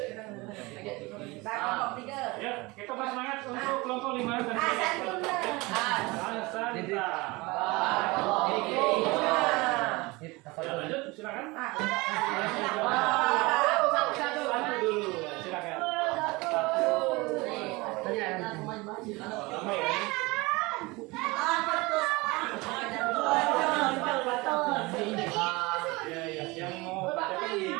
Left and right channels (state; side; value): quieter; left; 23.7 dB